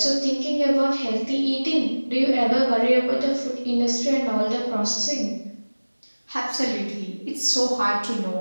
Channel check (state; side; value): inverted; both; correlation -1.00